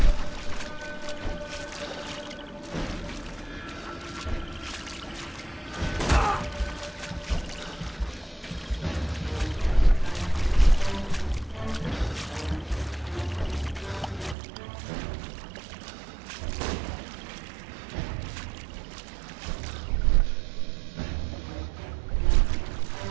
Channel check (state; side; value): drops out; left; at 14.4 s